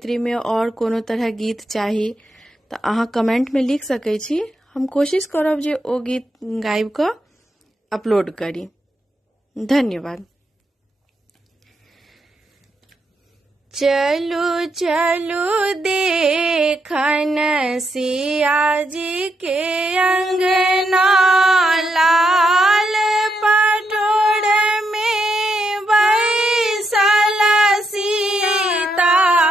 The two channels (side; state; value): both; normal; correlation 0.81